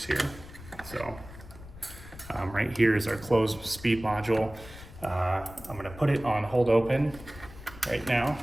here. So right here is our close speed module. I'm gonna put it on hold open right now.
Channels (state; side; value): noise; left; rumble, 16 dB below the sound